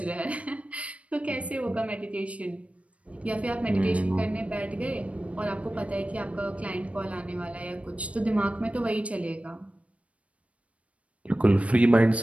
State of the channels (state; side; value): late; left; 0.064 ms